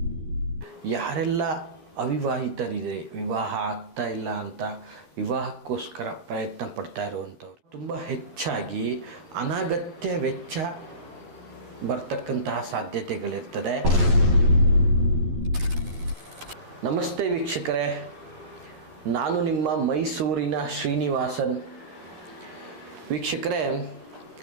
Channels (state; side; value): late; left; 11 ms